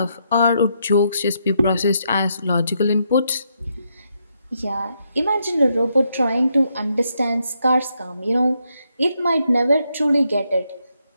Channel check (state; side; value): inverted; both; correlation -0.78